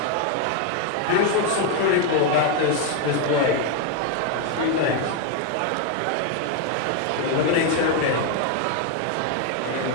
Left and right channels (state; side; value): different; both; correlation 0.01